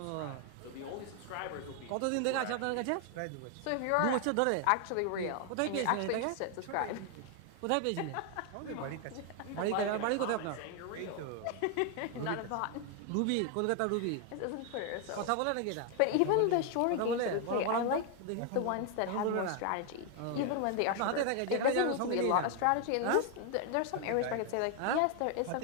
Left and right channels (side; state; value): both; different; correlation 0.01